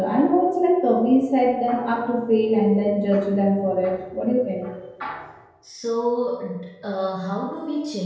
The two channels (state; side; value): identical; both; correlation 1.00